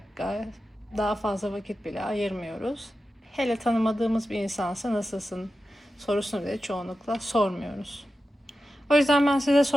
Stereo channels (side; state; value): both; normal; correlation 0.92